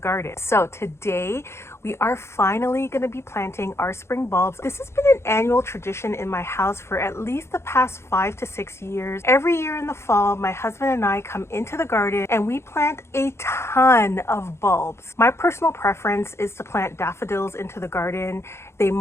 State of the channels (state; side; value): late; right; 0.13 ms